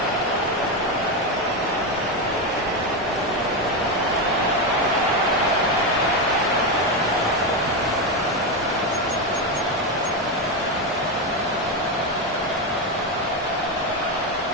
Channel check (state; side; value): normal; both; correlation 0.10